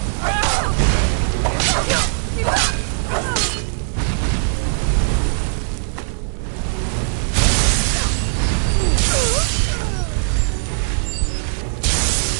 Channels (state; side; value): silent; left; digital silence